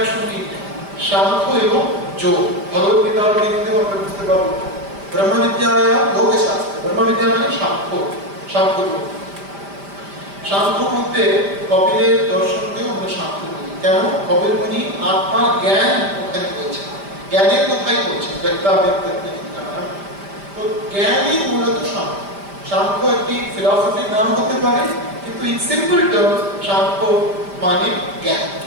সাংখ্য এবং যোগ। ভগবদ্গীতার মধ্যে আমরা বুঝতে পারবো ব্রহ্মবিদ্যায় যোগশাস্ত্র। ব্রহ্মবিদ্যা মানে সাংখ্য, সাংখ্য যোগ। সাংখ্য মধ্যে কপিলের দর্শনকেও আমরা সাংখ্য বলি। কেন? কপিল মুনি আত্মার জ্ঞান ওখানে বলছে, জ্ঞানের কথাই বলছে, ব্যক্তা ব্যক্তি বিজ্ঞান। তো জ্ঞানই মূলত সাংখ্য। সাংখ্য একটি ফিলসফির নাম হতে পারে, কিন্তু ইন সিম্পল টার্মস সাংখ্য মানে জ্ঞান,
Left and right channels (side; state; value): left; late; 5.0 ms